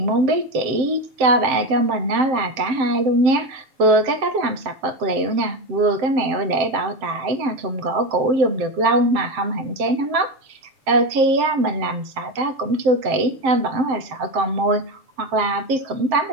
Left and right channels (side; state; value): left; late; 7.6 ms